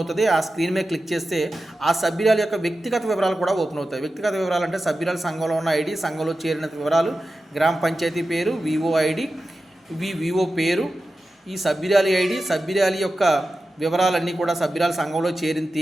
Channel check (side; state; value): both; normal; correlation 0.93